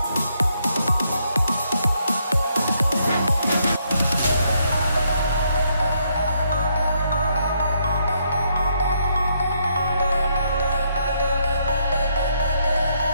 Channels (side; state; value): both; inverted; correlation -0.74